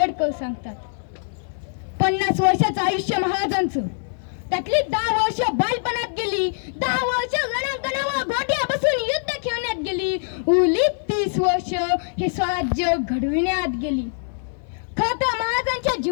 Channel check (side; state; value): right; silent; 59 dB below the other